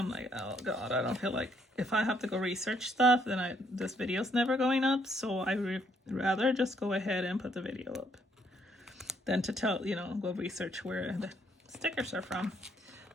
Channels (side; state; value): both; normal; correlation 0.70